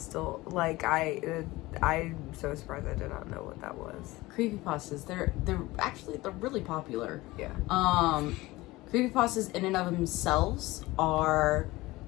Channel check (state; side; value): quieter; right; 19.8 dB